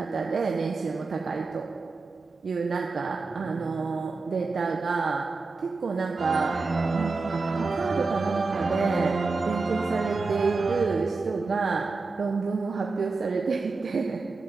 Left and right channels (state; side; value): quieter; left; 4.0 dB